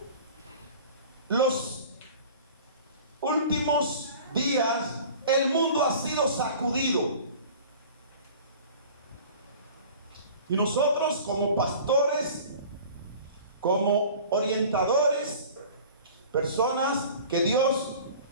los últimos días el mundo ha sido sacudido. Y nosotros como pastores, como orientadores, personas que Dios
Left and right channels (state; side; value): inverted; both; correlation -0.43